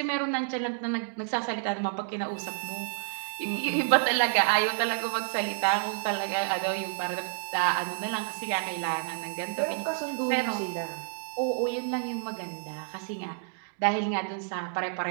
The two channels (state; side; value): silent; left; digital silence